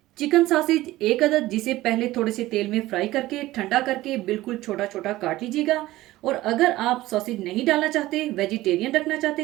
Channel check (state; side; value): quieter; left; 16.9 dB